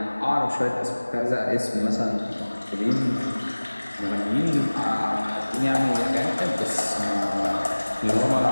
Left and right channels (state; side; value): inverted; both; correlation -1.00